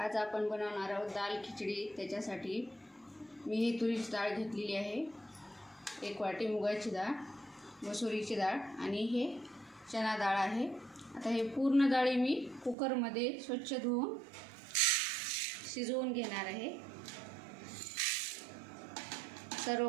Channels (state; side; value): drops out; left; at 12.8 s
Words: आपण बनवणार आहोत दाल खिचडी। त्याच्यासाठी मी ही तुरीची डाळ घेतलेली आहे, 1 वाटी मुगाची डाळ, मसुरीची डाळ आणि हे चना डाळ आहे। आता हे पूर्ण डाळी मी कुकरमध्ये स्वच्छ धुवून शिजवून घेणार आहे।